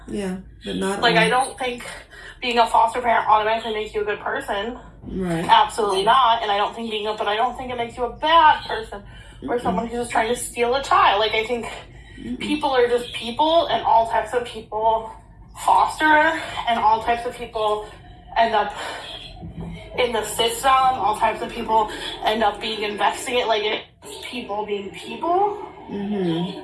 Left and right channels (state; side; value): identical; both; correlation 1.00